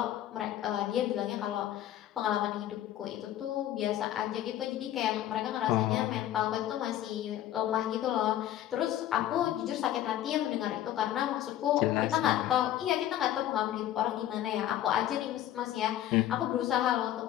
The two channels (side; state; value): right; quieter; 12.5 dB